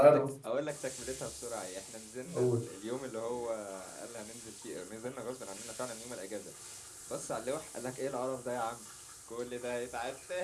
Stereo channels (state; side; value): identical; both; correlation 1.00